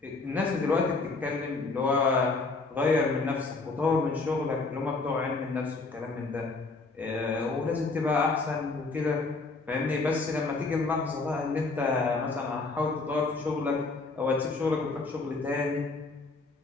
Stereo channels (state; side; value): quieter; right; 3.8 dB